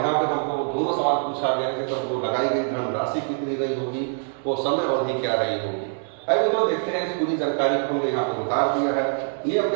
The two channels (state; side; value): silent; left; digital silence